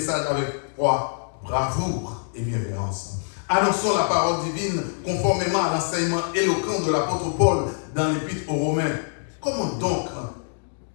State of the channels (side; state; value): right; silent; digital silence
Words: avec foi, bravoure et bienveillance. Annonçons la parole divine conformément à l'enseignement éloquent de l'apôtre Paul dans l'épître aux Romains. Comment donc